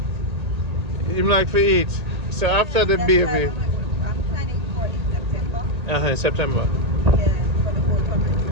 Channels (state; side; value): late; left; 1.8 ms